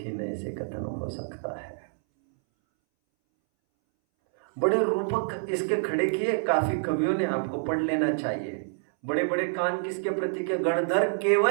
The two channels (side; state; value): left; silent; 60 dB below the other